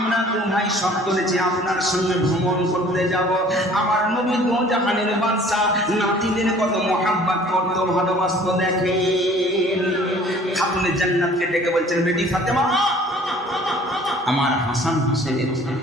তো ভাই সব করেছি, আপনার সঙ্গে ভ্রমণ করতে যাব। আমার নবী দো জাহানের বাদশা নাতিদের কত মহাব্বত করতো, ভালোবাসতো। দেখেন খাতুনে জান্নাতকে ডেকে বলছেন, বেটি ফাতেমা, আমার হাসান হোসেনের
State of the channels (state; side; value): normal; both; correlation 0.52